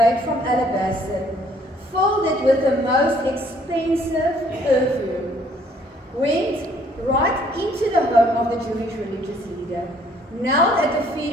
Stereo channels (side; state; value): both; normal; correlation 0.62